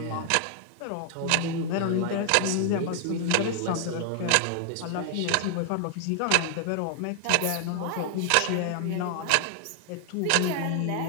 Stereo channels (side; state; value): both; different; correlation 0.00